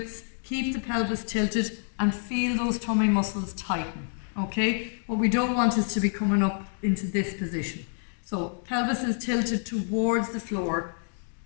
keep the pelvis tilted and feel those tummy muscles tighten. Okay, what we don't want is to be coming up into this position. So pelvis is tilted towards the floor,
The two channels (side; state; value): right; silent; 59 dB below the other